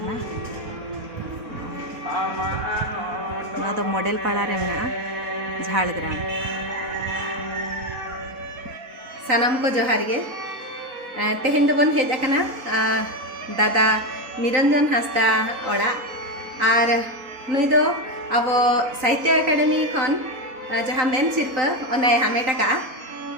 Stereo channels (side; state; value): left; late; 3.9 ms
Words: नोआ दो मॉडल पाड़ा रे मेना झाड़ग्राम सानाम को जोहार गे तेहेन दो बन हेज आकना दादा निरंजन हांसदा ओड़ा और नुई दो अब साहित्य अकादमी खन जहाँ मेन सिरपा ओना हामेट का